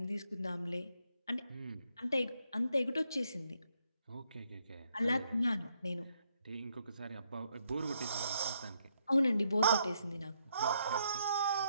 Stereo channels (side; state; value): both; inverted; correlation -0.76